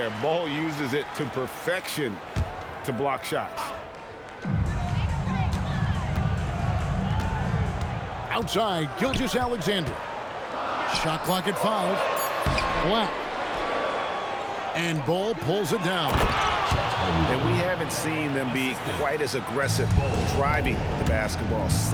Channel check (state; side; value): identical; both; correlation 1.00